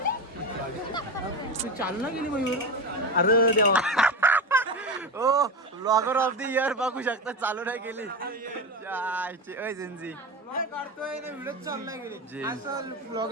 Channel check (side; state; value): both; normal; correlation 0.20